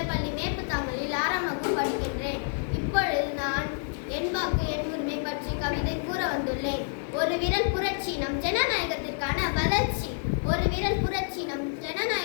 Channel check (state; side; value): silent; right; 59 dB below the other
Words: மேப்புத்தாமலில் 6ஆம் வகுப்பு படிக்கின்றேன். இப்பொழுது நான் என் வாக்கு என் உரிமை பற்றி கவிதை கூற வந்துள்ளேன். ஒரு விரல் புரட்சி நம் ஜனநாயகத்திற்கான வளர்ச்சி. ஒரு விரல் புரட்சி நம்